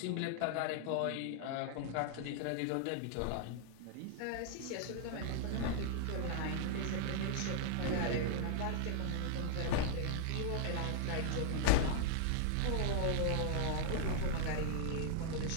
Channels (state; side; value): different; both; correlation -0.01